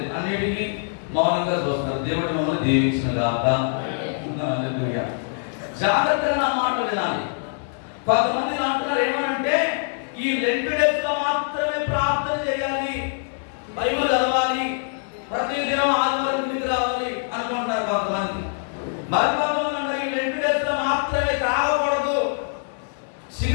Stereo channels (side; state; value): right; silent; digital silence